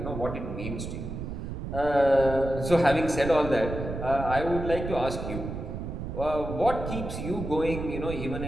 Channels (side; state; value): right; noise; rumble, 6 dB below the sound